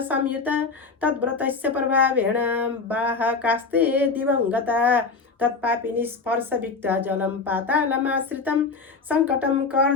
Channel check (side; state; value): right; quieter; 4.5 dB